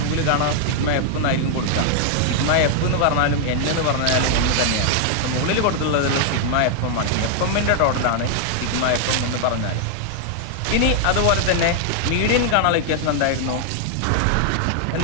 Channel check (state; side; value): different; both; correlation 0.00